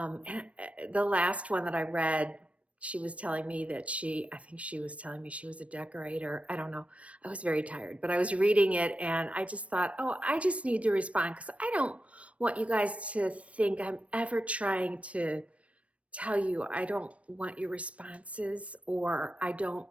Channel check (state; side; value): late; left; 0.064 ms